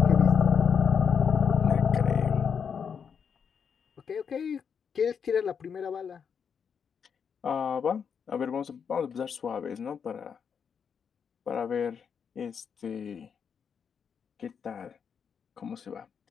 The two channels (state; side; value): quieter; right; 6.9 dB